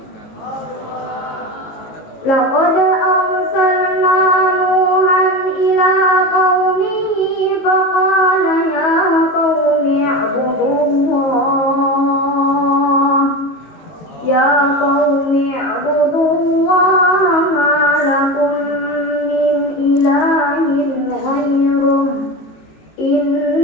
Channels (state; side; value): late; right; 19 ms